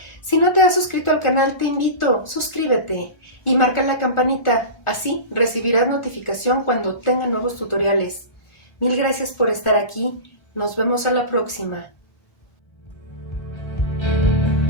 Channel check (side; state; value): right; late; 1.4 ms